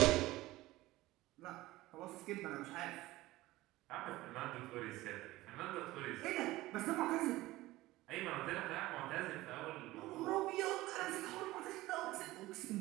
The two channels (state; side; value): quieter; left; 17.9 dB